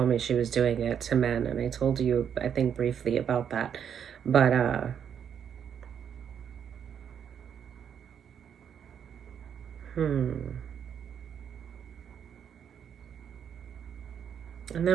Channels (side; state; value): left; quieter; 8.2 dB